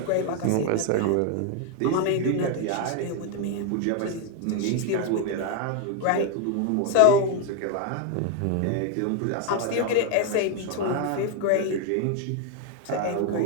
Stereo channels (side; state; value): both; different; correlation 0.01